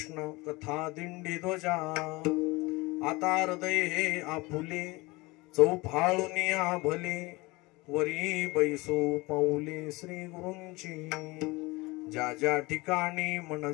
कथा दिंडी ध्वजा आता हृदय हे आपुले चौफाळुनिया भले वरी बैसो पाऊले श्री गुरूंची ज्या ज्या ठिकाणी मन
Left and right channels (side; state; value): right; quieter; 23.2 dB